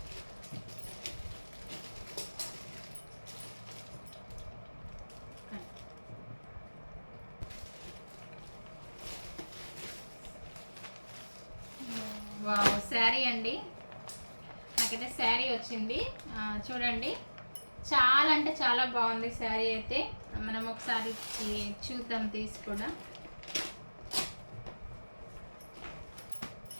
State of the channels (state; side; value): inverted; both; correlation -1.00